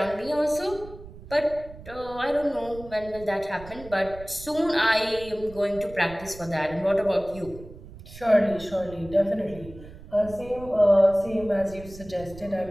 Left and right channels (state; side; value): noise; right; rumble, 17 dB below the sound